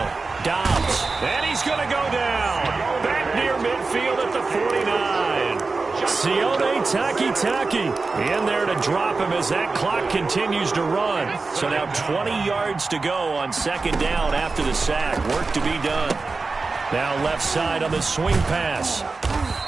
Dobbs. And he's going to go down. Back near midfield at the 49. Sione Takitaki in there to drop him as that clock continues to run. So now 20 yards to go on 2nd down after the sack. Work to be done. Now left side on the swing pass.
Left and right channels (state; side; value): quieter; left; 3.9 dB